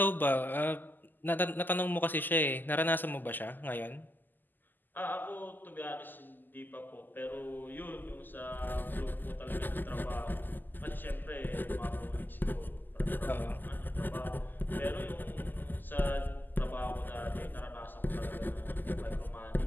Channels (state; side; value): late; right; 0.088 ms